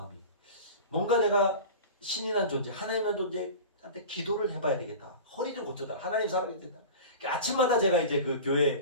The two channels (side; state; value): both; inverted; correlation -0.34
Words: 뭔가 내가 신이란 존재, 하나님이란 존재한테 기도를 해봐야 되겠다. 허리 좀 고쳐다. 하나님 사랑해야 된다. 아침마다 제가 이제 그